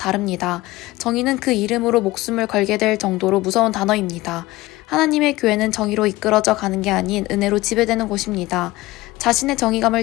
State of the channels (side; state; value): right; quieter; 19.0 dB